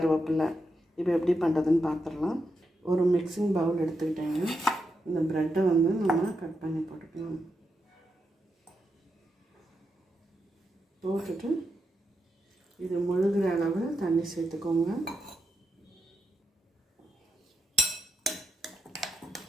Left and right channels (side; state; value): both; normal; correlation 0.85